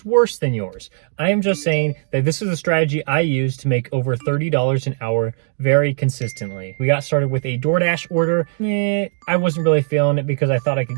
worse than yours. I am just saying that this is a strategy I use to make over $30 an hour very consistently. We got started with a DoorDash order. I wasn't really feeling it because I thought I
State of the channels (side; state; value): left; silent; digital silence